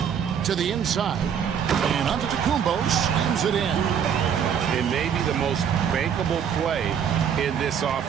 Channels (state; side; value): quieter; left; 8.0 dB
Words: To the inside. And Antetokounmpo slams it in. It may be the most bankable play in this